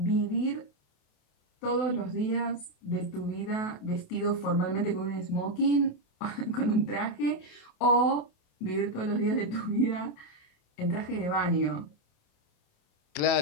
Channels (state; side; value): late; right; 28 ms